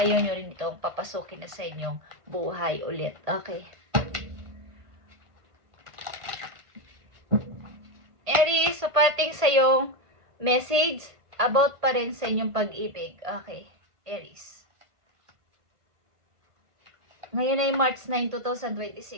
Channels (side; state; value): left; late; 1.5 ms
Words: nyo rin itong papasukin na sa inyong buhay ulit. Okay. Aries, so parting sa iyong message about pa rin sa inyong pag-ibig. Okay. Aries. Ngayon ay March 9,